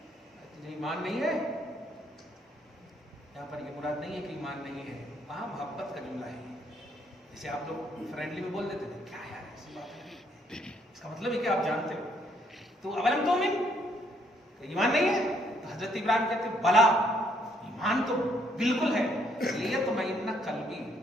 تجھے ایمان نہیں ہے؟ یہاں پر یہ مراد نہیں ہے کہ ایمان نہیں ہے، وہاں محبت کا جملہ ہے، جیسے آپ لوگ فرینڈلی میں بول دیتے تھے کیا یار ایسی بات ہے، اس کا مطلب ہے کہ آپ جانتے ہو۔ تو اولم تؤمن، ایمان نہیں ہے؟ تو حضرت ابراہیم کہتے ہیں بلا، ایمان تو بالکل ہے، لیطمئن قلبی،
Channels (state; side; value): normal; both; correlation 0.69